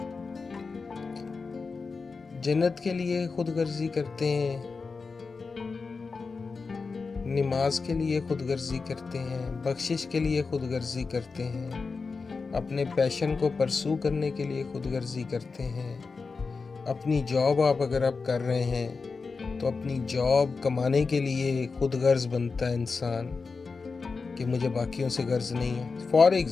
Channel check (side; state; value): right; quieter; 4.5 dB